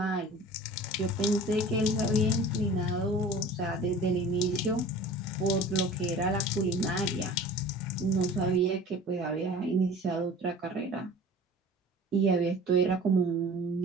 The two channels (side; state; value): both; normal; correlation 0.42